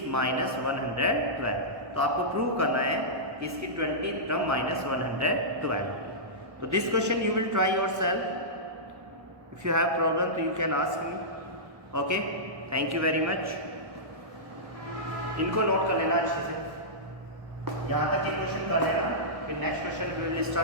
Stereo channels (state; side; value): late; left; 1.2 ms